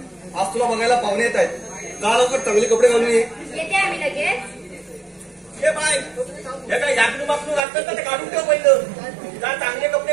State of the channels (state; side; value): drops out; left; at 7.6 s